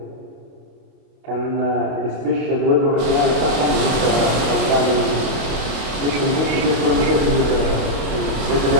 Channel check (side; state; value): left; late; 28 ms